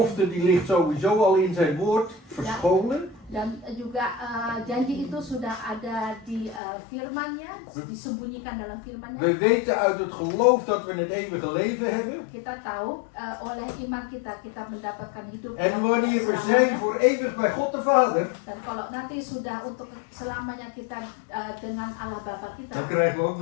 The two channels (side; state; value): right; drops out; at 6.6 s